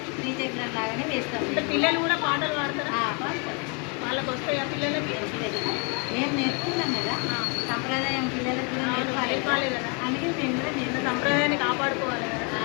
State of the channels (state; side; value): quieter; right; 34.6 dB